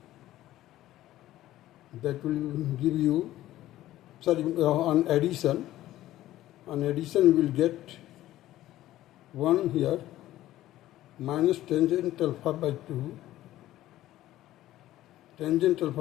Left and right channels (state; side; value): quieter; right; 14.6 dB